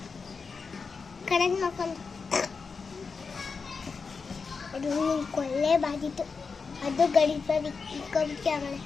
ಕರೆಂಟ್ ಮಾಡ್ಕೊಂಡು ಅದು ಕೊಳ್ಳೆ ಬಾದಿತ್ತು ಅದು ಗಡಿಸ್ಬಾರ್ದು ಇಕ್ಕೊಬಿಟ್ಟು ಆಮೇಲೆ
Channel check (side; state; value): right; quieter; 5.0 dB